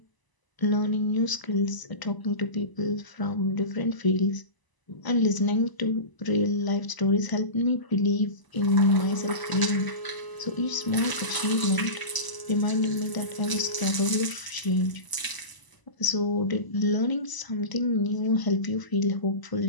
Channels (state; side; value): late; right; 1.0 ms